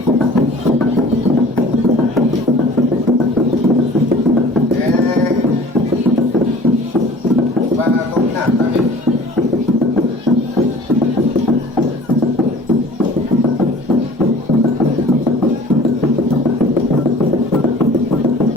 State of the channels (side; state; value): both; normal; correlation 0.47